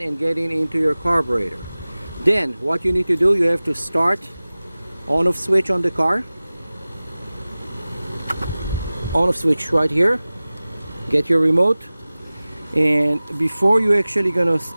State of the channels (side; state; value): both; inverted; correlation -0.98